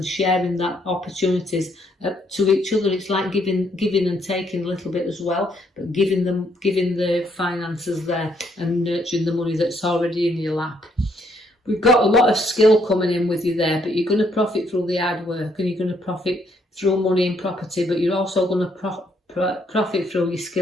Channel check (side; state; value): both; normal; correlation 0.71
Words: sharing that opportunities to each other. It's like giving and taking a little bit as well, but giving the finances there and nurturing the money that's already in your lap. We've got a lot of skill coming in with you there, but you're going to profit through the hard work and you're going to profit through money and property, but you're also going to profit through your